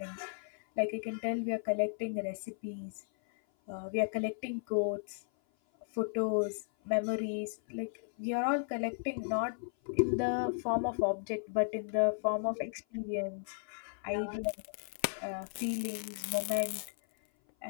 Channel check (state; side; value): silent; right; 54 dB below the other